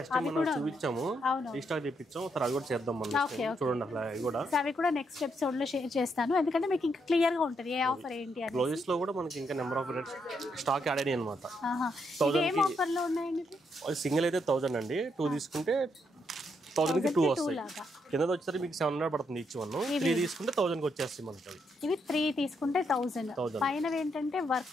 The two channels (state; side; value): normal; both; correlation 0.78